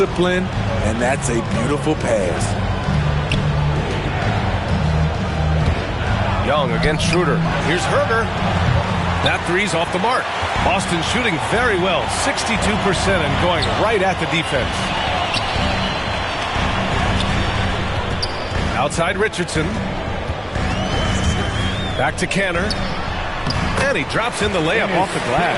and that's a beautiful pass. Young against Schroeder. Here's Herder. That three's off the mark. Boston shooting very well, 62% and going right at the defense. Outside Richardson. Back to Canner. And he drops in the layup off the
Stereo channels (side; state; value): both; identical; correlation 1.00